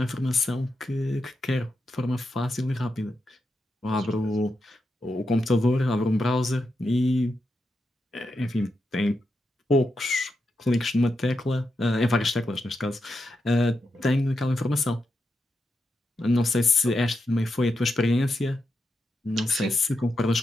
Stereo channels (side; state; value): both; normal; correlation 0.86